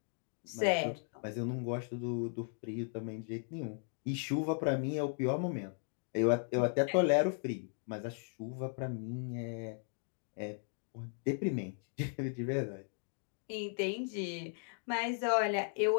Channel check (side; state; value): right; silent; 53 dB below the other